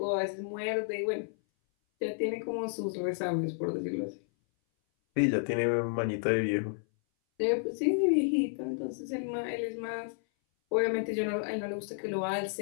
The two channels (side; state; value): right; silent; 57 dB below the other